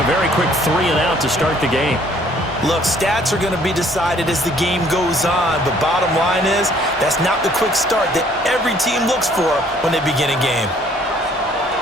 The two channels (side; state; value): both; normal; correlation 0.60